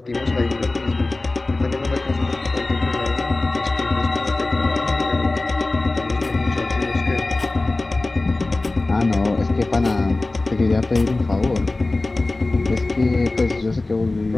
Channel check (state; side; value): quieter; right; 3.0 dB